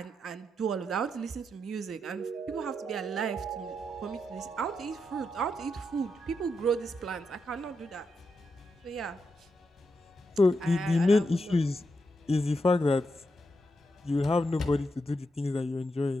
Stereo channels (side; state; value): both; normal; correlation 0.84